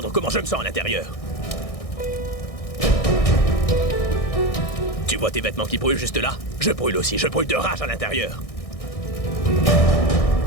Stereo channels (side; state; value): right; late; 1.6 ms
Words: comment je me sens à l'intérieur. Tu vois tes vêtements qui brûlent juste là? Je brûle aussi, je brûle de rage à l'intérieur.